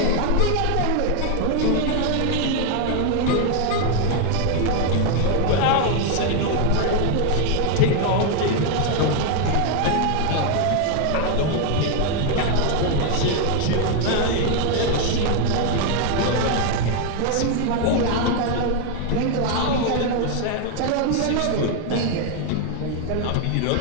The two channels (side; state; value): both; different; correlation 0.00